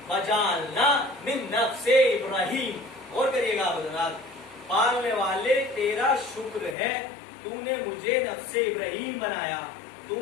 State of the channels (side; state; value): right; drops out; at 6.8 s